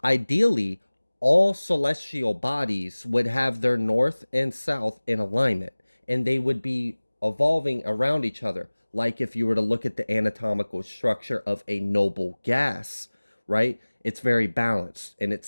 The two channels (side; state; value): both; inverted; correlation -1.00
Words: ideally all celestial bodies would have their north and south in alignment, and they would be evolving around each other. Like if you were to look at the anatomical structure of a noble gas, right? It's very balanced, and it